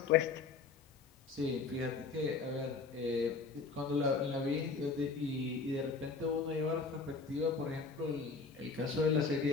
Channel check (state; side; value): quieter; right; 4.5 dB